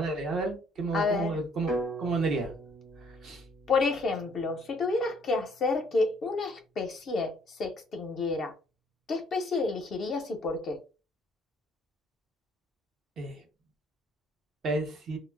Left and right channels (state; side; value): normal; both; correlation 0.63